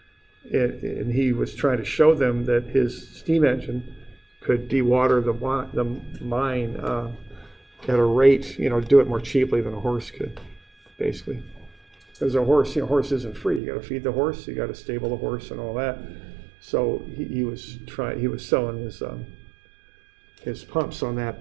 he was trying to show them that his steam engine could dewater the mine at a rate, you know, do it more cheaply than a horse could, basically. Because a horse, you know, horse isn't free. You got to feed the horse, you got to stable the horse, and all that. So he was selling his pumps on that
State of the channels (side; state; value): left; drops out; at 13.6 s